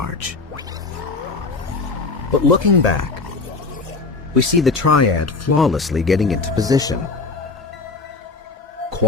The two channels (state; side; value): quieter; right; 3.9 dB